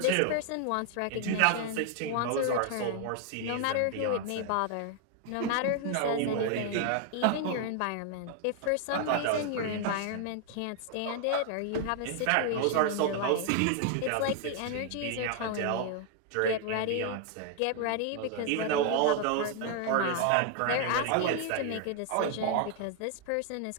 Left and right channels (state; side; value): different; both; correlation 0.00